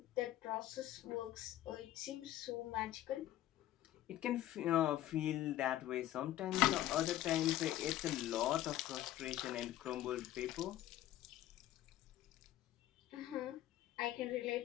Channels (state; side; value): quieter; right; 13.6 dB